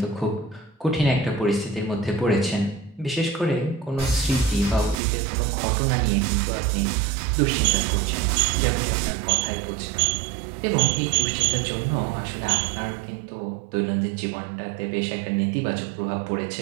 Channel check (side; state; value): left; drops out; at 5.0 s